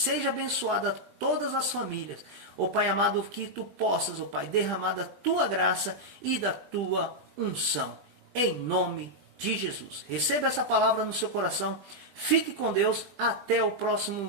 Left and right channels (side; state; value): left; late; 20 ms